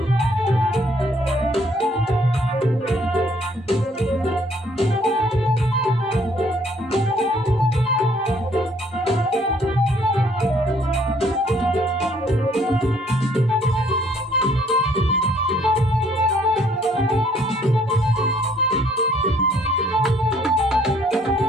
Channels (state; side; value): normal; both; correlation 0.63